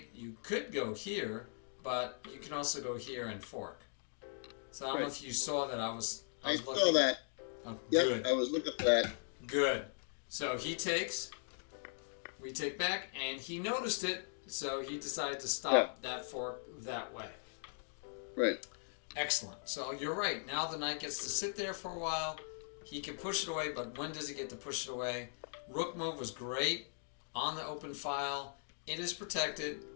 you could go here, but you can also go here and fork. So I don't know Right. if you saw that I was I looking. saw that. Oh, Yep, good. I was looking for that. Good. So he takes, we take back, and he noticed it, so he decided to stop that fork that way. Right. Excellent. So you're right. Now the knight gets to sit there for a while. He can push it away, but when does he get to push it away? Rook move was great on the open file. It is protected,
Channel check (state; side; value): silent; right; digital silence